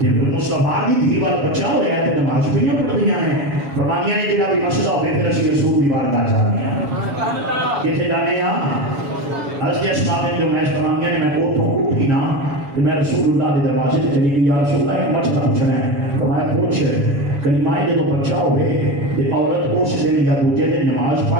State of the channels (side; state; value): left; late; 7.1 ms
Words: مصطفیٰ دی دھی وال بچہ ہویا تے نماز بھی نہیں پڑھدیاں ہیں فرمانیاں نے جڑا بھی مسئلہ ہوے پھر اسی رسول دی بارگاہ جانے ہیں کتے جانے ہیں حضرت اسماء بنت امیس فرمانیاں نے میں اوتھوں اٹھی نا کہ میں رسول اللہ کے دروازے سے چلی گئی یا رسول اللہ ایک مسئلہ پوچھنا ہے فرمایا پوچھ کلمہ جدو بچہ ہوئے تے عورت اس دن یا دوجے دن نماز